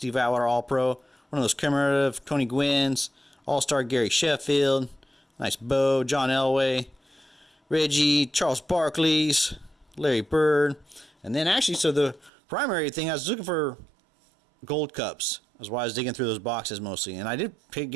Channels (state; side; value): drops out; left; at 12.3 s